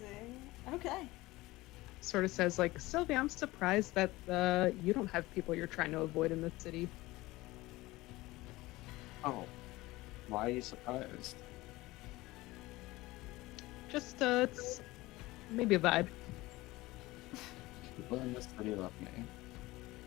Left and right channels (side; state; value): right; quieter; 19.6 dB